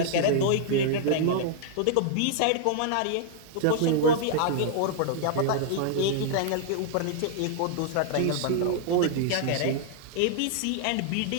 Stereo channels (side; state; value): both; different; correlation -0.01